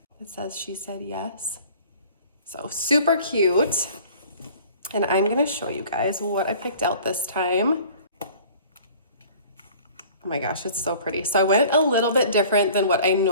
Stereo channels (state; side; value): inverted; both; correlation -0.48